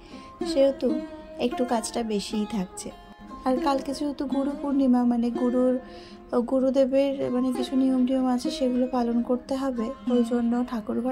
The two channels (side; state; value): both; identical; correlation 1.00